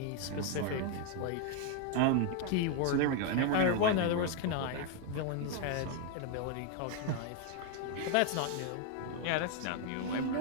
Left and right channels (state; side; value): different; both; correlation 0.01